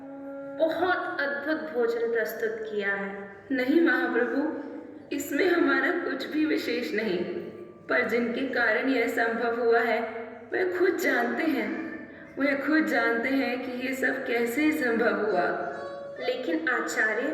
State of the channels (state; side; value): identical; both; correlation 1.00